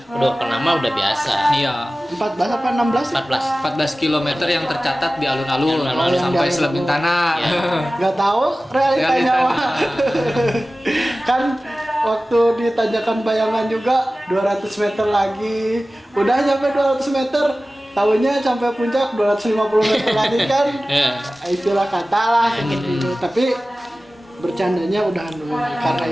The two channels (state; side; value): normal; both; correlation 0.96